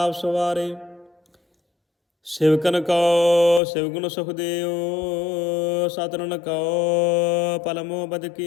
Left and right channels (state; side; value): drops out; right; at 3.6 s